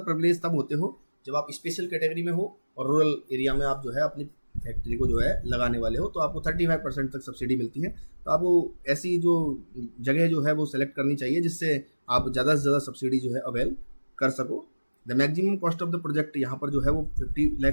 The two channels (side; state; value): both; inverted; correlation -1.00